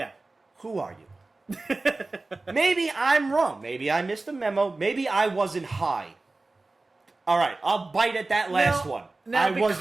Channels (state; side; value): quieter; left; 3.3 dB